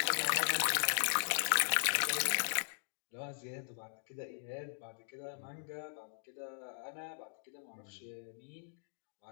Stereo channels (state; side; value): silent; right; digital silence